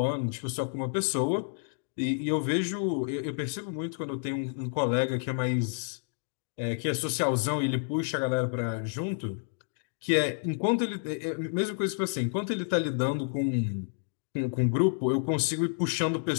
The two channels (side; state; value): right; silent; digital silence